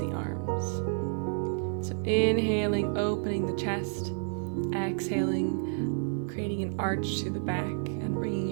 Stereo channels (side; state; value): left; silent; digital silence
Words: arms. So inhaling, opening the chest, exhaling, creating an arch to the back and bringing